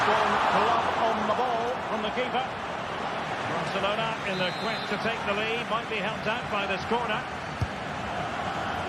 glove on the ball from the keeper. Barcelona in the quest to take the lead, might be helped out by this corner.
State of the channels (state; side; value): identical; both; correlation 1.00